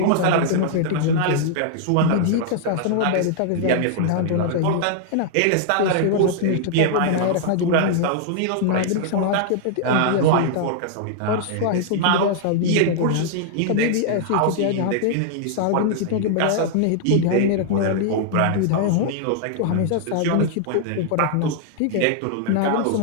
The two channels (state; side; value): different; both; correlation -0.01